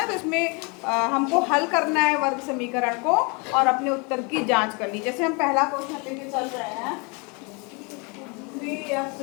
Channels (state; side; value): quieter; right; 31.3 dB